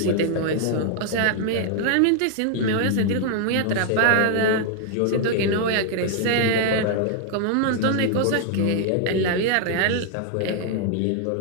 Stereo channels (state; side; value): different; both; correlation 0.00